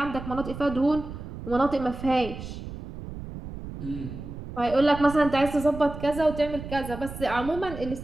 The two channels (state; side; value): noise; right; rumble, 10 dB below the sound